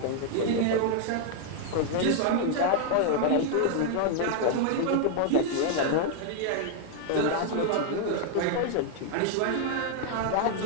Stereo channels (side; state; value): both; different; correlation 0.00